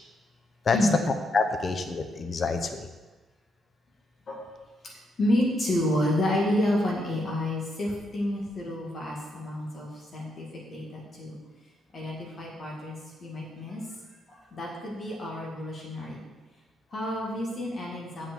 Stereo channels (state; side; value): normal; both; correlation 0.79